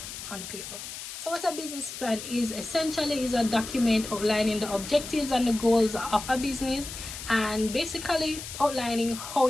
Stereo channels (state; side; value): noise; left; hiss, 10 dB below the sound